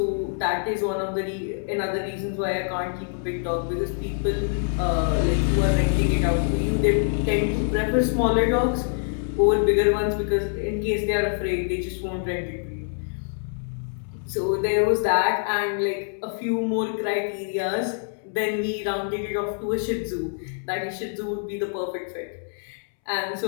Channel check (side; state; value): right; silent; 62 dB below the other